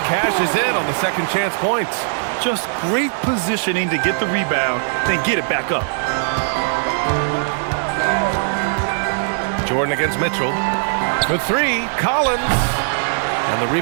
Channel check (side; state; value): left; silent; 61 dB below the other